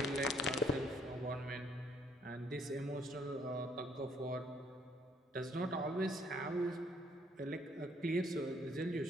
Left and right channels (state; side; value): normal; both; correlation 0.66